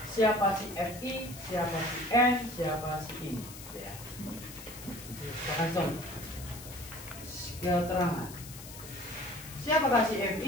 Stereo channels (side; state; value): left; noise; hiss, 14 dB below the sound